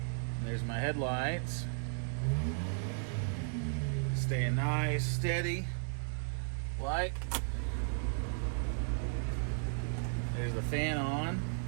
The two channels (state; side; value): silent; left; digital silence